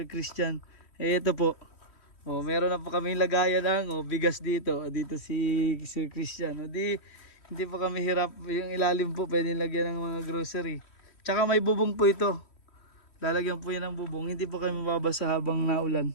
Christian. Ito po, meron na po kami lagayan ng bigas dito si Sir Christian. Hindi po kami hirap, yung ilalim po pwede lagyan ng mga grocery. Tsaka may bubong po ito, lalagyan po yan ng bubong, hindi po kami mababasa habang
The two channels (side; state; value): right; late; 3.1 ms